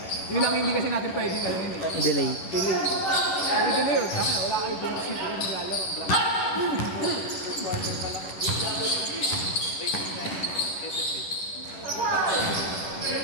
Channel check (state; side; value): late; right; 11 ms